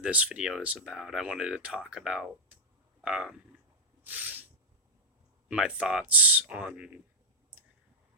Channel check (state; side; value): normal; both; correlation -0.06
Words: video is about. I wanted to talk about um, my thoughts on